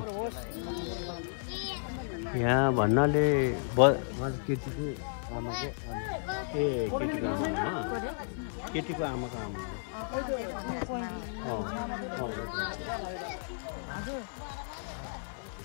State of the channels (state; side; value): silent; right; 56 dB below the other